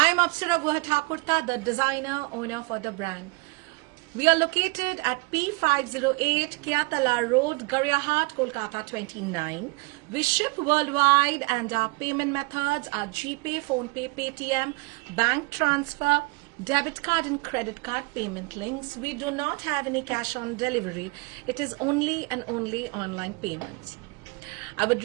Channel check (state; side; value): quieter; left; 27.6 dB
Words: am Apsara Guhathakurta, the designer owner for the brand. We are located at P508 Kyatala Road, Garyahat, Kolkata 29. We ship worldwide and our payment methods are GPay, PhonePe, Paytm, bank transfer, debit card and credit card payment links. We do not have any cash on delivery. It is only and only online payments. I would